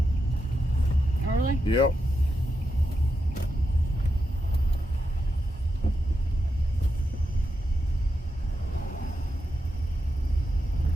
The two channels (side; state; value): both; normal; correlation 0.86